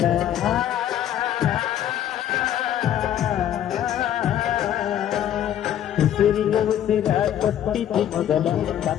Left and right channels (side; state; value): right; quieter; 10.8 dB